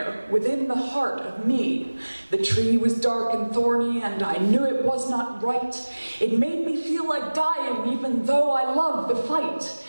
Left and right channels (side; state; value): both; inverted; correlation -1.00